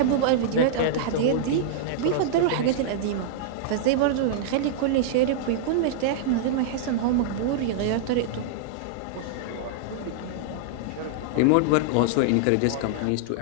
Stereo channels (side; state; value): both; different; correlation -0.02